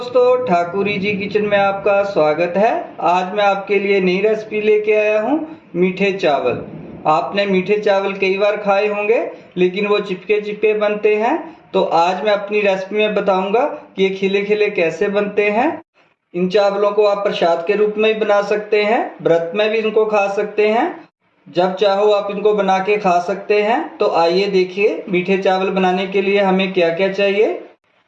ठाकुरी जी किचन में आपका स्वागत है। आज मैं आपके लिए नई रेसिपी लेके आया हूँ, मीठे चावल। आपने मीठे चावल कई बार खाए होंगे, लेकिन वो चिपके चिपके बनते हैं। तो आज मैं अपनी रेसिपी में बताऊंगा कि ये खिले खिले कैसे बनते हैं। इन चावलों को आप प्रसाद के रूप में भी बना सकते हैं, व्रत में भी इनको खा सकते हैं। जब चाहो आप इनको बना के खा सकते हैं। तो आइए देखिए मीठे चावल बनाने के लिए हमें क्या क्या चाहिए।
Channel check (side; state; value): both; identical; correlation 1.00